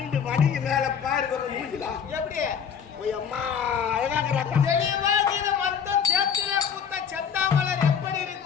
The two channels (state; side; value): quieter; right; 7.4 dB